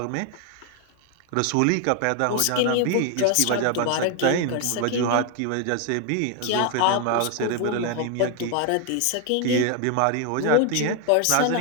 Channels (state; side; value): different; both; correlation 0.01